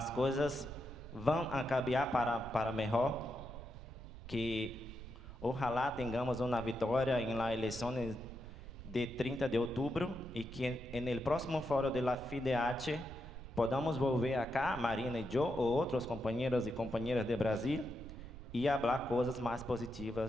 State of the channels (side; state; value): right; noise; rumble, 13 dB below the sound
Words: coisas vão cambiar para melhor, que ojalá tenhamos uma vitória em las eleições de 30 de outubro e que no próximo fórum da FIDH podamos volver acá, Marina e eu, ou outros companheiros e companheiras de Brasil, e falar coisas mais